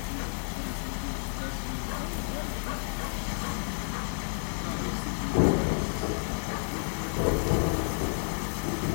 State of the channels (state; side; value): silent; right; 57 dB below the other